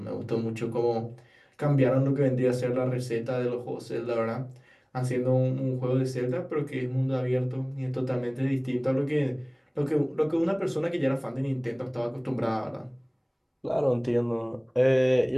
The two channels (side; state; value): both; identical; correlation 1.00